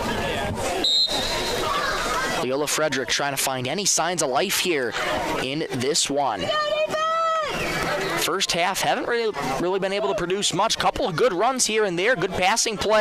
Leola Frederick trying to find any signs of life here in this one. First half, haven't really been able to produce much. Couple of good runs here and there. Good passing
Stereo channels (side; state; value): both; identical; correlation 1.00